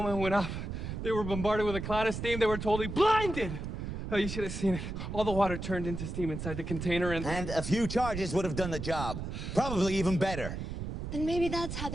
it went up, they were bombarded with a cloud of steam. They were totally blinded. Oh, you should have seen it. All the water turned into steam inside the container and... And a few charges would have done the job. Probably even better. Then maybe that's how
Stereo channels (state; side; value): noise; right; rumble, 5 dB below the sound